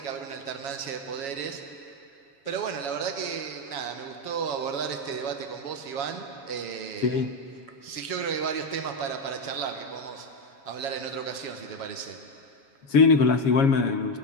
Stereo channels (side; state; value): right; late; 7.2 ms